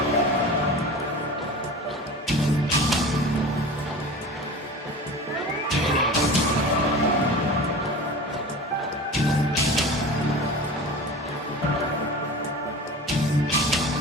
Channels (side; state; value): both; normal; correlation 0.35